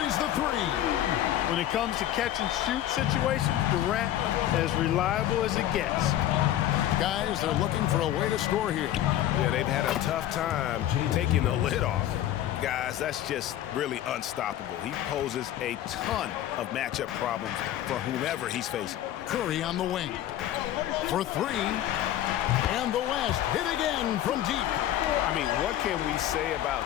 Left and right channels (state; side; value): quieter; right; 12.4 dB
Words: the 3. When it comes to catch-and-shoot situations, Durant as reliable as it gets. Guys, they're looking for a way to score here. Yeah, they've had a tough time taking the lid off. Guys, that's just really unstoppable. He poses a ton of matchup problems for whomever he's facing. Curry on the wing. For three. And the West hit again from deep. I mean, what can we say about